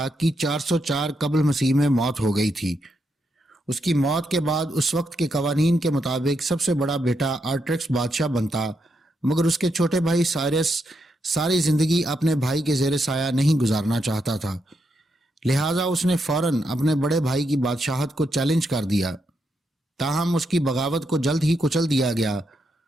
کی 404 قبل مسیح میں موت ہو گئی تھی۔ اس کی موت کے بعد اس وقت کے قوانین کے مطابق سب سے بڑا بیٹا آرٹرکس بادشاہ بنتا، مگر اس کے چھوٹے بھائی سائرس ساری زندگی اپنے بھائی کے زیر سایہ نہیں گزارنا چاہتا تھا، لہٰذا اس نے فوراً اپنے بڑے بھائی کی بادشاہت کو چیلنج کر دیا۔ تاہم اس کی بغاوت کو جلد ہی کچل دیا گیا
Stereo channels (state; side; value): normal; both; correlation 0.81